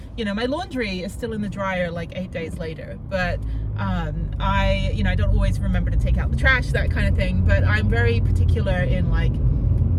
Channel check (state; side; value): identical; both; correlation 1.00